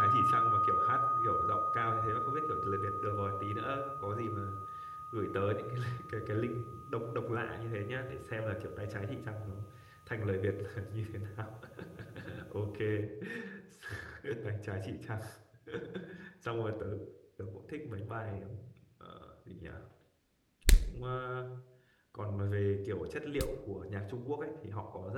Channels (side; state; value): both; identical; correlation 1.00